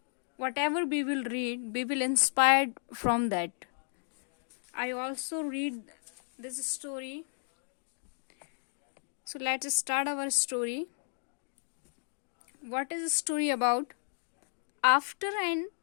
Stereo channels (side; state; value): right; silent; digital silence